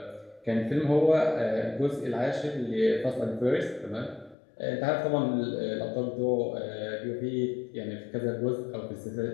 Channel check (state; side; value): drops out; right; at 4.4 s